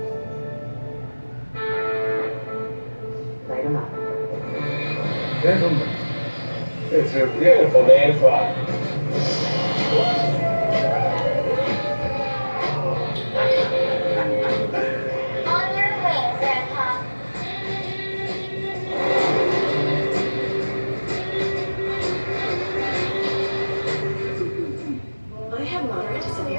Light 'em up. Gentlemen, it's a beautiful day to fly. On your way, Grandpa. I have moderate to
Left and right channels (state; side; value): inverted; both; correlation -1.00